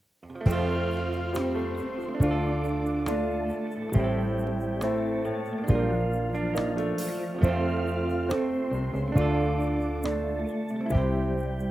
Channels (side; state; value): both; normal; correlation 0.93